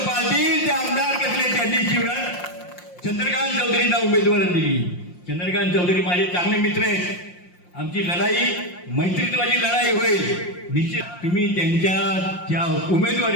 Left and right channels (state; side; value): late; right; 5.6 ms